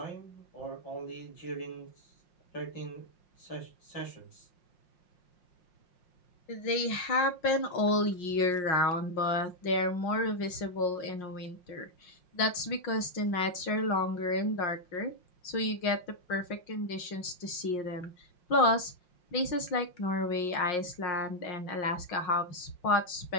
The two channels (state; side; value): late; right; 5.6 ms